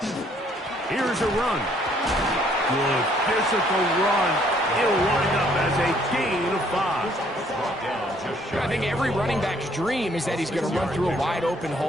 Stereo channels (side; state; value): both; normal; correlation 0.64